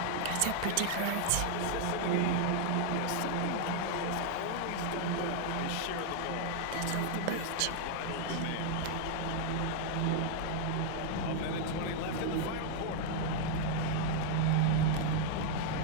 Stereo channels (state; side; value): different; both; correlation 0.00